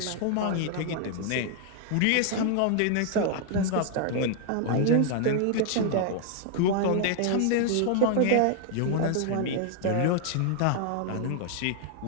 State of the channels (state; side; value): different; both; correlation 0.00